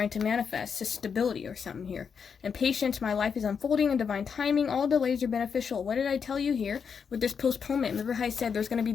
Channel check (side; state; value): right; quieter; 6.4 dB